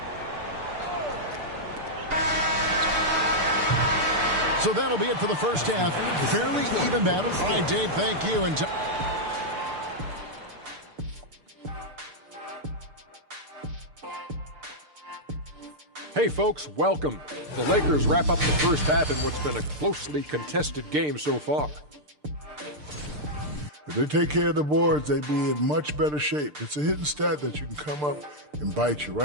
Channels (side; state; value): left; late; 6.7 ms